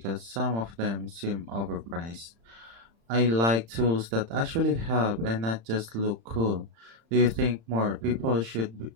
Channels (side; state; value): left; late; 35 ms